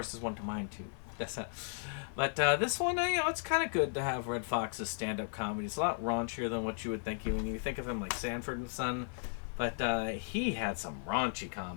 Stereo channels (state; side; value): silent; right; 54 dB below the other